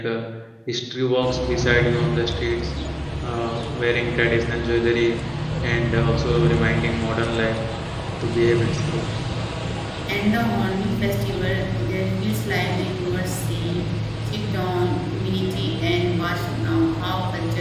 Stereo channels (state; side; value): identical; both; correlation 1.00